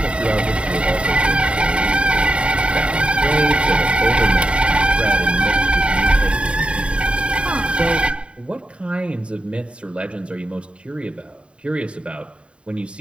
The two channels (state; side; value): late; left; 0.057 ms